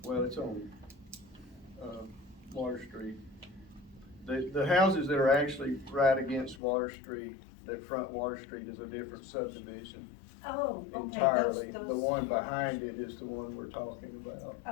Well, it's on, Water Street. The houses that are actually right against Water Street, that front Water Street, is a different subdivision. Oh, okay. Entirely. Those. The one behind it is the one we're talking about.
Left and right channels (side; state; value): right; drops out; at 6.6 s